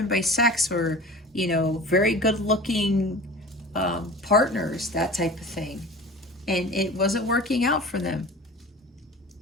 by sex or, very good looking partners, that type of thing. And it wasn't working out for them.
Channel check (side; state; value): both; normal; correlation 0.38